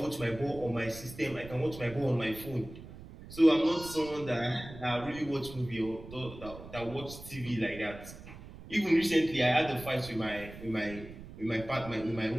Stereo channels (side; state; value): right; noise; rumble, 15 dB below the sound